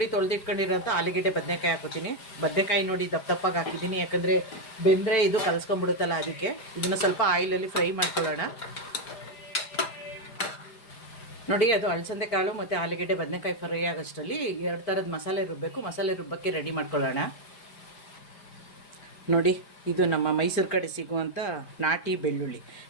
ತೊಳೆದಿಟ್ಕೊಂಡಿರೋಂಥ ಆಲೂಗೆಡ್ಡೆ ಬದನೆಕಾಯಿ ಹಾಕೋತೀನಿ. ಬದನೆಕಾಯಿ ನೋಡಿ ದಪ್ಪ ದಪ್ಪಾಗಿ ಹಾಕಿದ್ದೀನಿ, ಯಾಕಂದರೆ ಬೆಂದರೆ ಇದು ಕಲಸ್ಕೊಂಡ್ಬಿಡುತ್ತಲ್ಲ, ಅದಕ್ಕೆ. ಇದನ್ನು ಸ್ವಲ್ಪ ಆಯಿಲಲ್ಲಿ ಫ್ರೈ ಮಾಡ್ಕೊಳ್ಳೋಣ. ನೋಡಿ, ಅದು ಅಲಸಂದೆ ಕಾಳು ಮತ್ತು ಆಲೂಗೆಡ್ಡೆ ಬದನೆಕಾಯಿ ಫ್ರೈ ಆಗೋಷ್ಟರಲ್ಲಿ 2 ಥರದ ಮಸಾಲೆ ರುಬ್ಬಬೇಕು. ಮಸಾಲೆ ರುಬ್ಬಕ್ಕೆ ರೆಡಿ ಮಾಡ್ಕೊಳ್ಳೋಣ. ನೋಡಿ, ಇದು ನಮ್ಮ ಮೈಸೂರು ಕಡೆ ಸಿಗುವಂಥ ನಾಟಿ ಬೆಳ್ಳುಳ್ಳಿ.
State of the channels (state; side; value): late; right; 4.9 ms